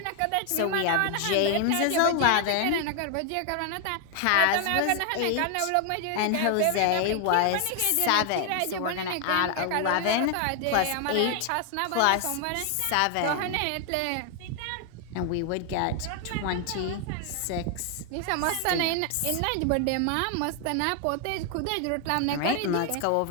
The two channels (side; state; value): both; different; correlation 0.00